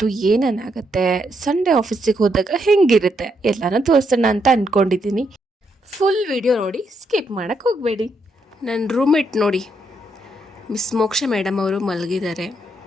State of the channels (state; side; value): normal; both; correlation 0.77